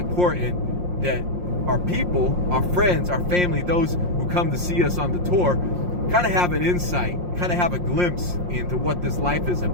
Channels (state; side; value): late; left; 5.6 ms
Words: that our people, our friends, our family, those who come to see us on the tour, kind of have an insight, kind of have a glimpse into what this life is